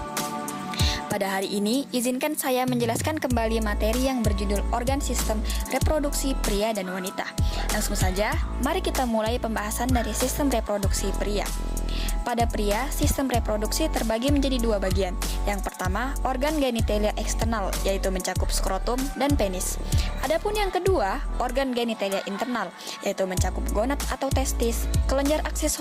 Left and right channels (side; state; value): both; identical; correlation 1.00